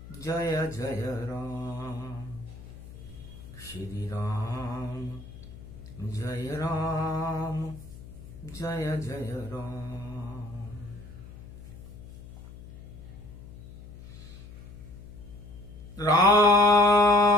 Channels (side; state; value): left; noise; hum, 16 dB below the sound